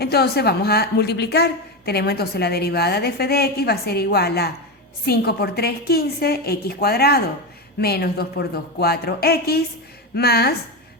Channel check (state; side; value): normal; both; correlation 0.15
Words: vamos a multiplicar. Tenemos entonces la derivada de f de x va a ser igual a 5 por 3, 15, x cuadrado, menos 2 por 2, 4x, más...